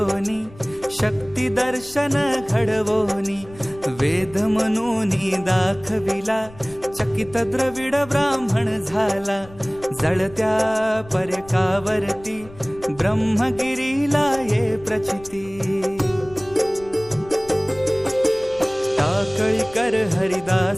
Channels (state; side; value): noise; left; rumble, 21 dB below the sound